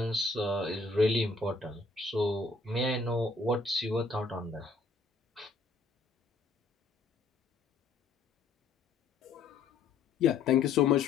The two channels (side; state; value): right; quieter; 4.0 dB